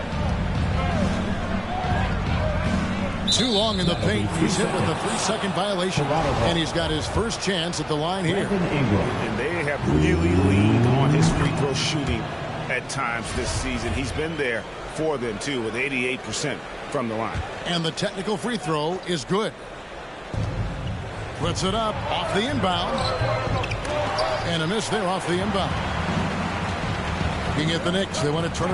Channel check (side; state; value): both; identical; correlation 1.00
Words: Too long in the paint. He's hit with a 3-second violation. And he's got his first chance at the line here. And they have really leaned on his free throw shooting at times this season. He's been there for them, too, with 88% from the line. And the technical free throw is good. Puts it up off the inbound. And a miss there off the inbound. Looking at the Knicks, they want to turn